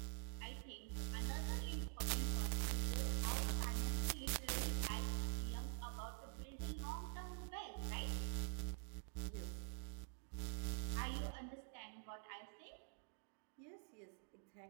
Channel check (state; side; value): silent; left; digital silence